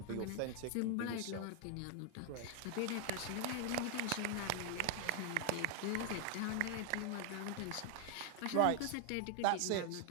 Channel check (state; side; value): different; both; correlation 0.00